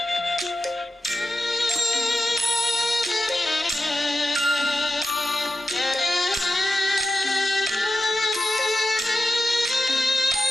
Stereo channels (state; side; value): normal; both; correlation 0.92